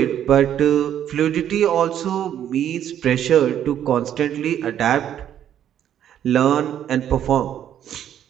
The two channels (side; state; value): left; quieter; 10.3 dB